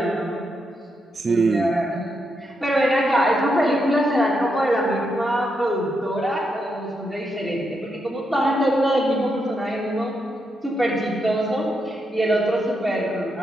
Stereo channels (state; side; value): normal; both; correlation 0.82